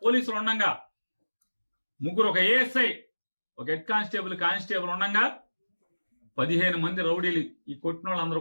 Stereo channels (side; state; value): both; inverted; correlation -1.00